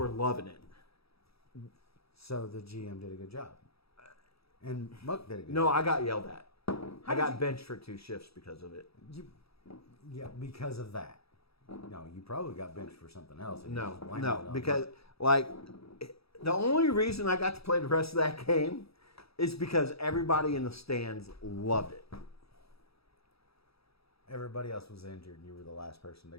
loving it. So the GM did a good job. And Muck did a good No, job. I got yelled at. I did got you- benched for 2 shifts because of it. Yeah, because of that. No, you probably got benched for something else. and you No, just blamed it on because Muck. the only reason I got to play the rest of that game is because everybody in the stands loved it. Everybody else was injured and you were the last person to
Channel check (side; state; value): right; late; 0.77 ms